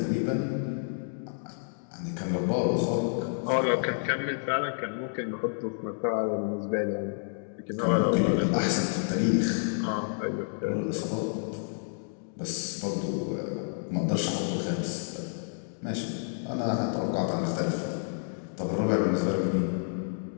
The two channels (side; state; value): right; silent; digital silence